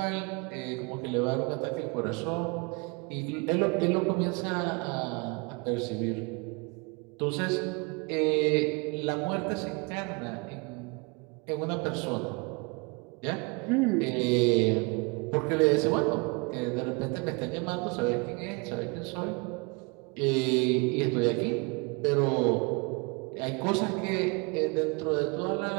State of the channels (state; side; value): quieter; left; 30.3 dB